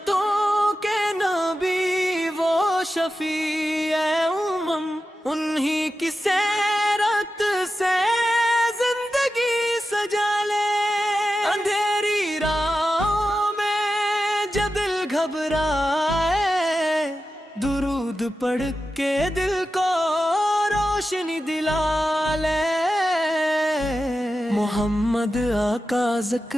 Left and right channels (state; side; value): normal; both; correlation 0.91